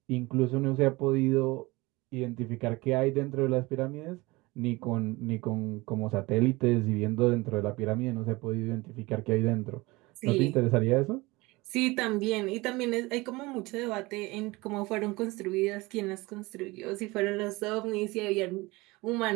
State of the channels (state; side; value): quieter; left; 22.5 dB